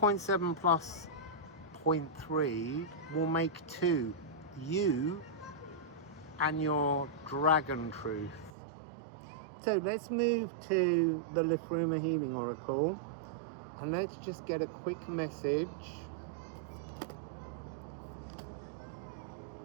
plus 0.3 will make 2. You and your dragon truth. So let's move to the Liffruma Healing Oracle, and let's just get a quick message.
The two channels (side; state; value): left; drops out; at 8.5 s